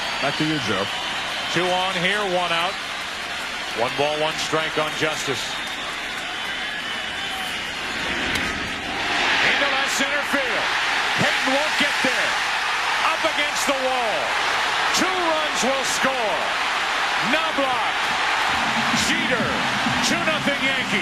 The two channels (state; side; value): identical; both; correlation 1.00